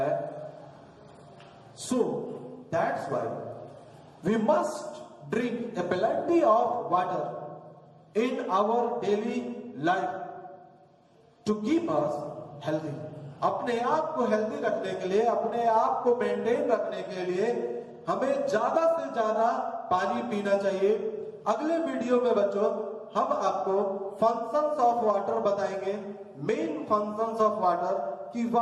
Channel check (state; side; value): identical; both; correlation 1.00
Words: So that's why we must drink a plenty of water in our daily life to keep us healthy. अपने आप को हेल्दी रखने के लिए, अपने आप को मेंटेन रखने के लिए हमें ज्यादा से ज्यादा पानी पीना चाहिए। अगले वीडियो में बच्चों हम आपको फंक्शंस ऑफ वाटर बताएंगे, मेन फंक्शंस ऑफ वाटर, कि